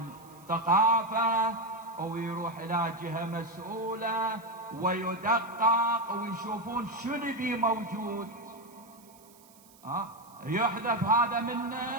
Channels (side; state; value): right; noise; hiss, 26 dB below the sound